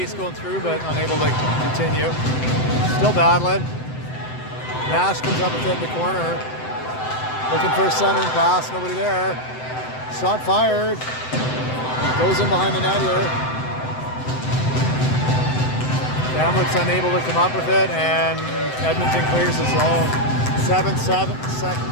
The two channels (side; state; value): right; late; 7.8 ms